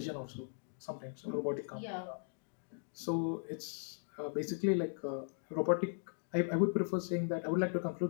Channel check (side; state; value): right; silent; digital silence